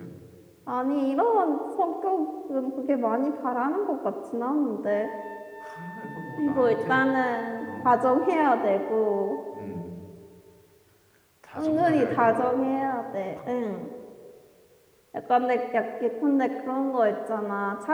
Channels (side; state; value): both; identical; correlation 1.00